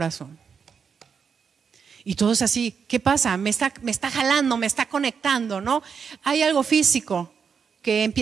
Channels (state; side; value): quieter; left; 6.4 dB